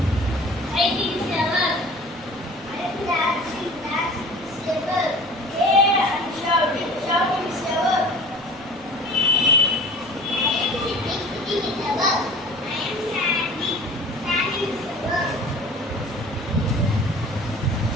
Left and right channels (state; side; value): noise; right; rumble, 23 dB below the sound